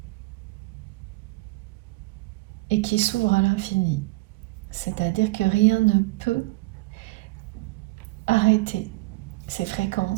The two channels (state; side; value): quieter; left; 23.0 dB